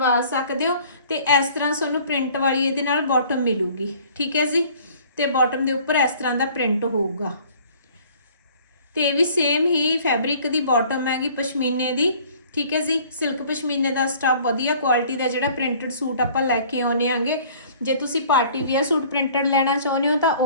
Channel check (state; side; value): inverted; both; correlation -0.53